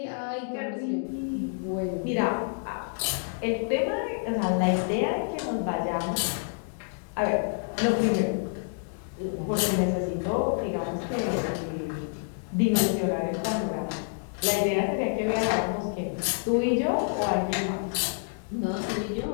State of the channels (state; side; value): silent; right; 56 dB below the other